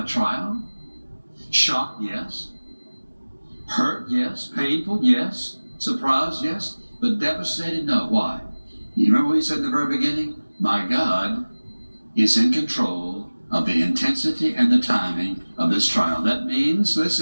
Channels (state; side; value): inverted; both; correlation -1.00